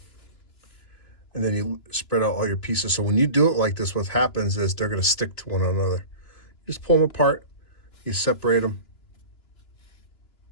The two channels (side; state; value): right; late; 2.9 ms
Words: And then you spread out all your pieces. So when you do it like this, what happens is they're going to stick to one another. You just pull them apart, you separate them,